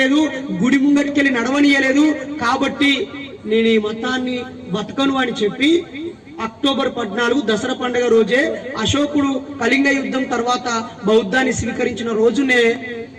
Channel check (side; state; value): both; identical; correlation 1.00